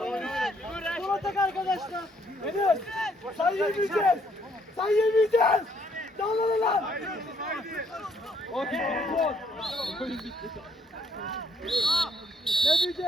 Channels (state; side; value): normal; both; correlation 0.69